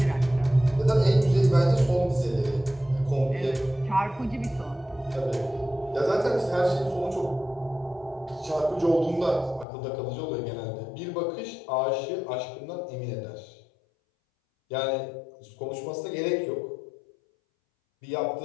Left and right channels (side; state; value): right; drops out; at 9.7 s